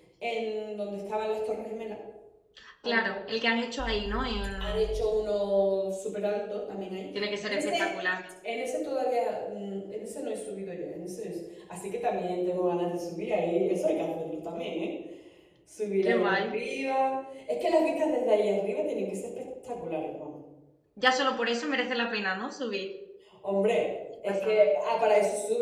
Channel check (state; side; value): identical; both; correlation 1.00